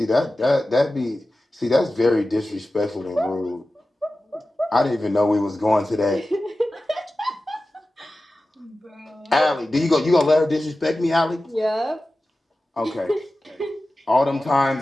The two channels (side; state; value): both; normal; correlation 0.94